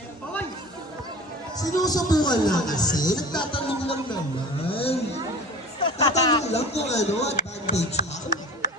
Sinusubukan lang kasi. Nagtatanong lang naman. Tatanong lang kung ano, advantage pa.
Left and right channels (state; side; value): normal; both; correlation 0.39